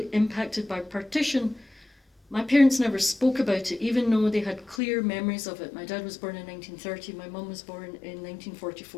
impacted by partition, my parents never spoke about it, even though they had clear memories of it. My dad was born in 1930, my mum was born in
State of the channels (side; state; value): right; drops out; at 4.8 s